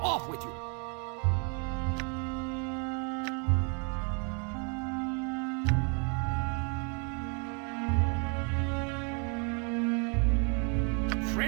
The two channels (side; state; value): left; quieter; 36.4 dB